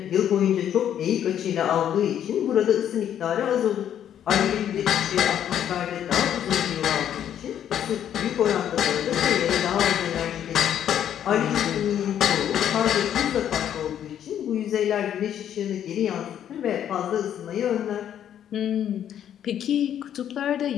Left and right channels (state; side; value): quieter; right; 10.0 dB